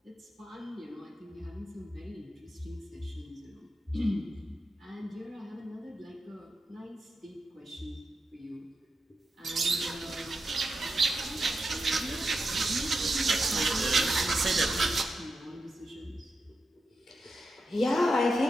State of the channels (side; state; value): both; normal; correlation 0.88